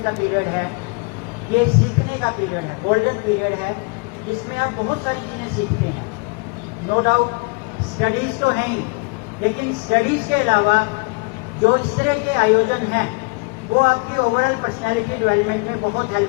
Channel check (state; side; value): quieter; right; 30.7 dB